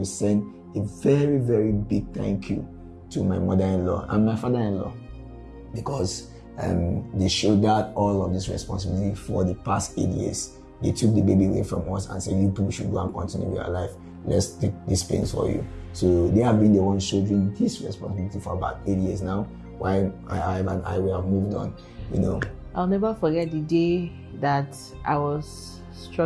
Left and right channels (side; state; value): both; identical; correlation 1.00